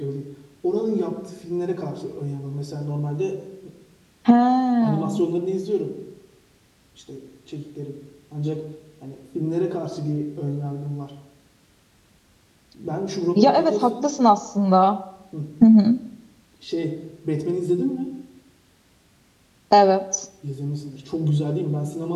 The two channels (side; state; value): both; identical; correlation 1.00